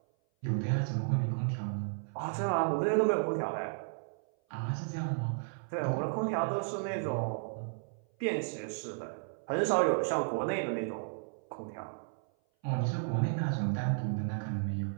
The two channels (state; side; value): silent; left; 55 dB below the other